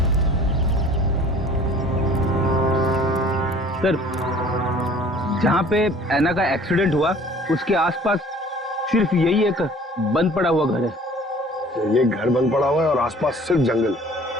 सर जहां पे ऐना का एक्सीडेंट हुआ उसके आसपास सिर्फ यही एक बंद पड़ा हुआ घर है। ये घर बंद पड़ा हुआ है और आसपास सिर्फ जंगल।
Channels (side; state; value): both; normal; correlation 0.50